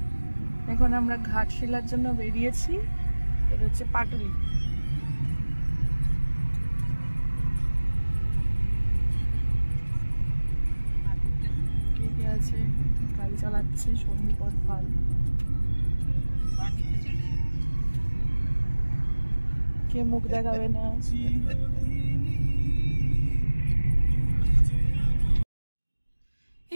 এখন আমরা ঘাটশিলার জন্য বেরিয়েছি। এটা হচ্ছে পাটুলি। কে কে আছে? গাড়ি চালাচ্ছে সন্দীপন পাল। কে মুখ দেখাবে না?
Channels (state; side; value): inverted; both; correlation -1.00